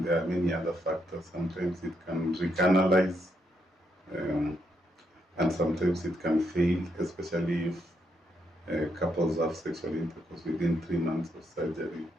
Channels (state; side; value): normal; both; correlation 0.78